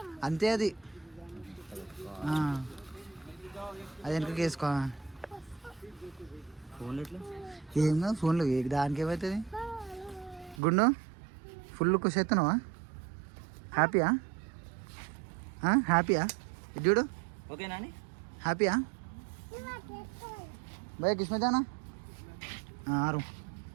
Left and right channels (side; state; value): left; drops out; at 10.6 s